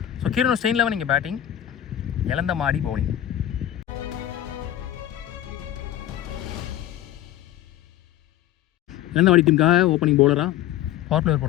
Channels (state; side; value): quieter; right; 12.4 dB